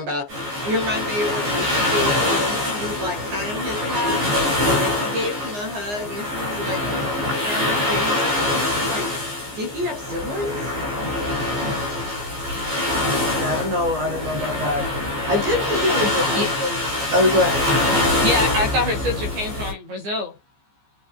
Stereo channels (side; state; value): left; late; 15 ms